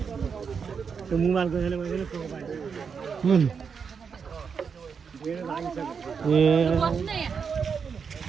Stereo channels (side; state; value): left; quieter; 6.2 dB